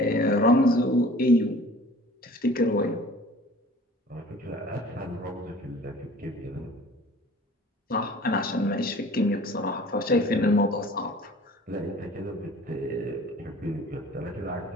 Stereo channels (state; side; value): normal; both; correlation 0.46